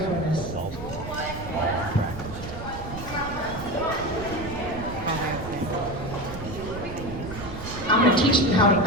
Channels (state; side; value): noise; right; rumble, 10 dB below the sound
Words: for this. I'm going to teach them how to